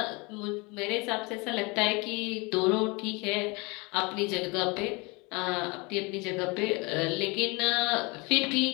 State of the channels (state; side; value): quieter; right; 27.4 dB